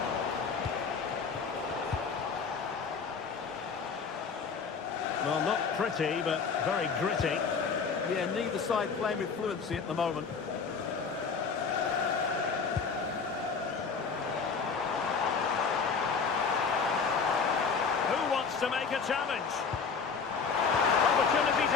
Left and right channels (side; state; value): right; quieter; 5.4 dB